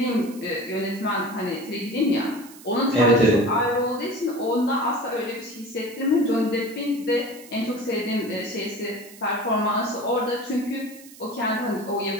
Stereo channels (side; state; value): right; noise; hiss, 20 dB below the sound